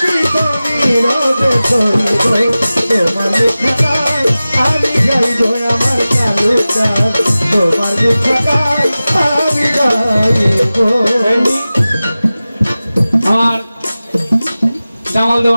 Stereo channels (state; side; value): inverted; both; correlation -0.96